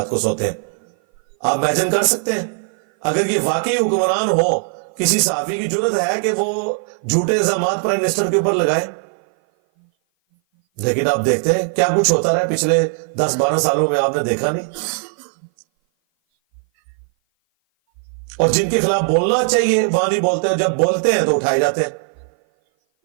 کو سوتے ہیں. آپ امیجن کر سکتے ہیں اگر یہ واقعی حکمران ہو, کسی صحافی کی جرت ہے کہ وہ جھوٹے الزامات پرائم منسٹر کے اوپر لگائے؟ لیکن آپ دیکھتے ہیں کیا کچھ ہوتا رہا پچھلے 10-12 سالوں میں, آپ نے دیکھا نہیں. اور جن کے خلاف بولنا چاہیے وہاں نہیں بولتے, جب بولتے ہیں تو اٹھائے جاتے ہیں.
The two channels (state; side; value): silent; left; 57 dB below the other